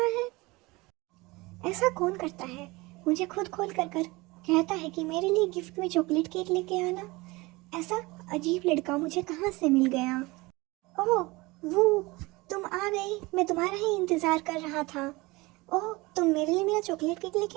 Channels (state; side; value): quieter; left; 22.8 dB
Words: है। ऐसा कौन करता है? मुझे खुद खोल कर कहता है कि मेरे लिए गिफ्ट में चॉकलेट केक लेके आना। ऐसा अजीब लड़का मुझे कहाँ से मिल गया? ओह वो तुम आ गई, मैं तुम्हारा ही इंतज़ार कर रहा था। ओह तुम मेरे लिए मेरा चॉकलेट केक